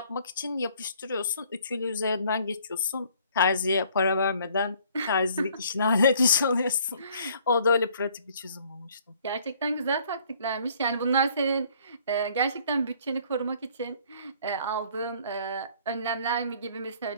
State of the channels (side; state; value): both; inverted; correlation -0.59